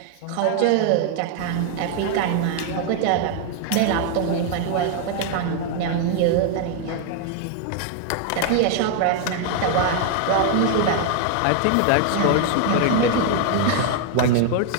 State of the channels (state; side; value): different; both; correlation 0.00